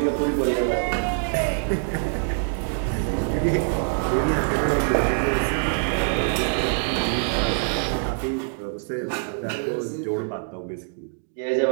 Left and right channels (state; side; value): silent; left; 62 dB below the other